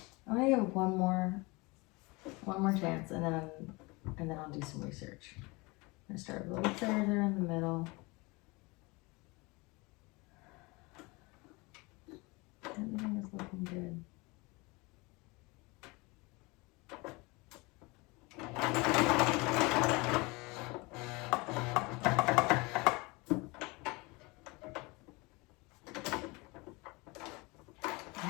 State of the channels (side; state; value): right; quieter; 25.5 dB